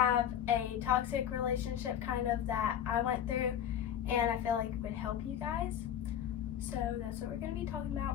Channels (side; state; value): right; quieter; 9.8 dB